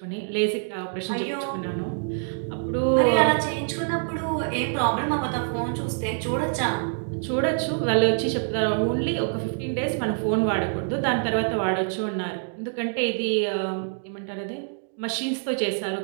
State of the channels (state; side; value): silent; left; 61 dB below the other